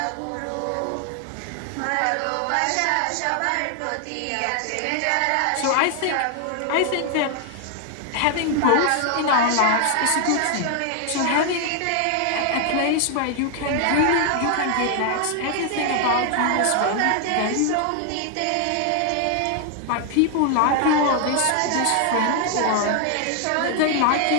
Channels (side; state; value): both; different; correlation 0.00